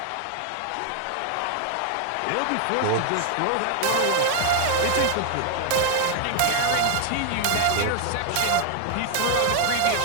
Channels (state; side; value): different; both; correlation 0.00